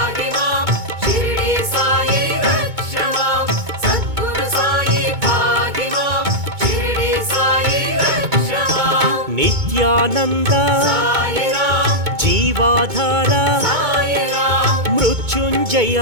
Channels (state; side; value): late; left; 2.2 ms